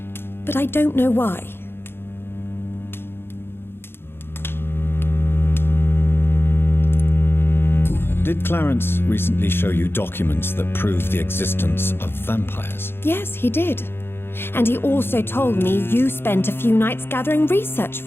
but I don't know why. Did Clarence recently show you documents that prove the existence of vampires? Yes, he did. And he also told me you spent a few nights gathering research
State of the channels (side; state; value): right; late; 0.11 ms